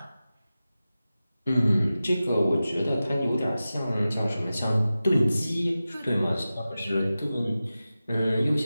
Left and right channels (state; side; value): inverted; both; correlation -0.94